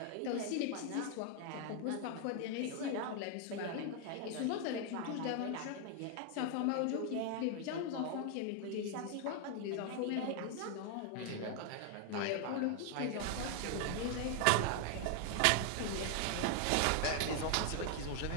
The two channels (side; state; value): both; different; correlation 0.00